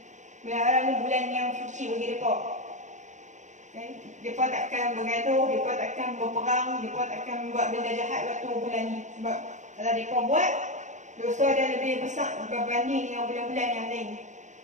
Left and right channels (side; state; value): left; late; 0.35 ms